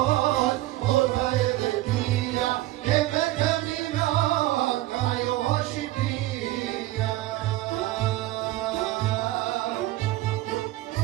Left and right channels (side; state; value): left; quieter; 16.7 dB